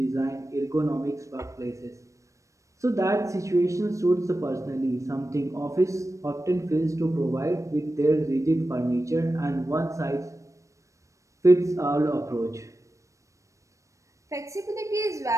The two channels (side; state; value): left; late; 0.15 ms